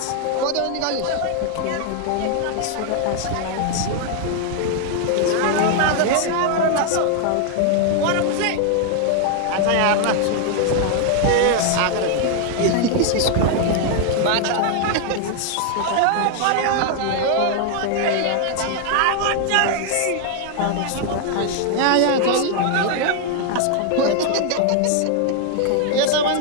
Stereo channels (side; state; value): both; different; correlation 0.00